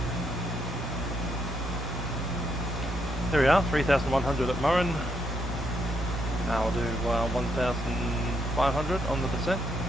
There we are, 3,100 at Murrin. Now we'll do 1,500 on the descent.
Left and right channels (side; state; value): both; normal; correlation 0.77